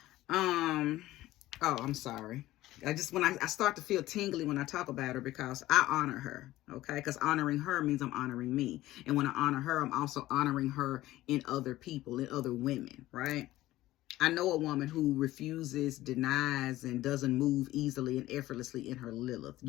Oh, I'm sorry. When I start to feel tingly when I talk about her, because I honor her, okay? Because honoring her means I'm honoring me. And when I honor her, I'm also honoring her in other people, in other women, right? I know a woman who refuses, denies, and doesn't move easily and effortlessly in her Lilith.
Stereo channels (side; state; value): right; quieter; 16.1 dB